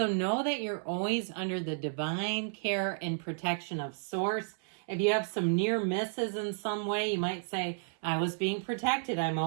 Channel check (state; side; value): silent; left; 56 dB below the other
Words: know that you're always under the divine care and protection of Source. If you have some near misses in some way, you might say, I was being protected. I'm